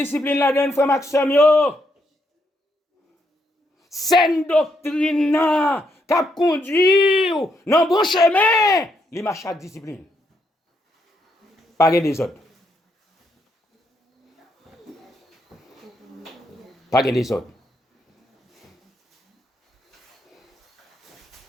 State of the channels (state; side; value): normal; both; correlation 0.77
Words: là-dedans, frère Maxime, c'est une doctrine qui a conduit dans le bon chemin. Il marche avec discipline. Pas des autres. Pas des autres.